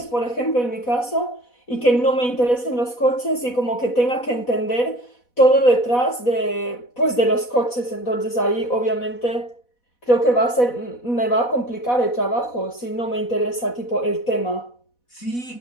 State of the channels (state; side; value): late; right; 4.1 ms